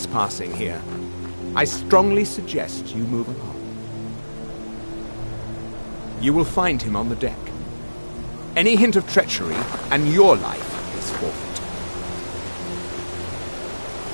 here. I strongly suggest you move along. You will find him on the deck. Any hint of treachery, and your life is forfeit.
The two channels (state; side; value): inverted; both; correlation -1.00